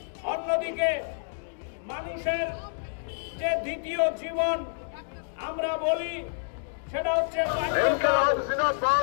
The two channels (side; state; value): right; silent; digital silence